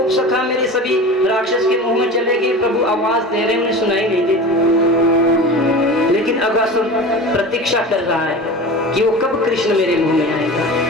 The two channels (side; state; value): both; normal; correlation 0.33